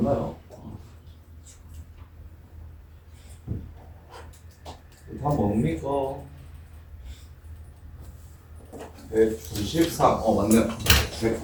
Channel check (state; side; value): identical; both; correlation 1.00